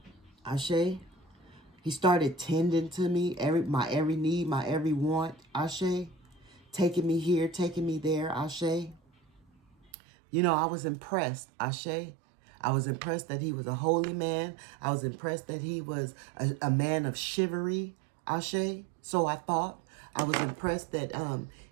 Ashe. He started tending to me, my every need, my every want. Ashe. Taking me here, taking me there. Ashe. You know, I was impressed. Ashe. I was impressed that he was a holy man. I was impressed that he was a man of chivalry. Ashe. So I thought. I was impressed that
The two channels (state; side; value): drops out; left; at 9.9 s